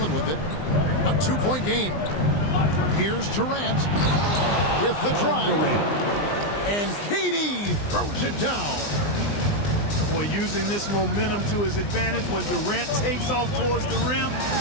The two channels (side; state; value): right; late; 20 ms